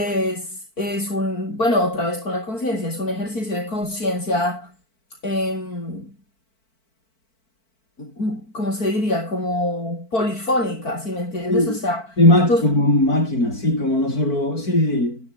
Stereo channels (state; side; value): late; right; 4.5 ms